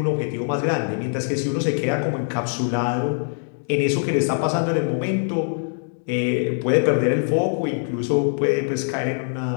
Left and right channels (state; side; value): silent; right; digital silence